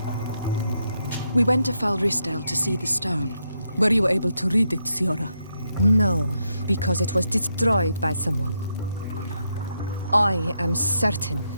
We went to Falristel to see the stone. Were you able to read it, Siora? No, because it was destroyed by someone. I am certain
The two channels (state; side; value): inverted; both; correlation -0.81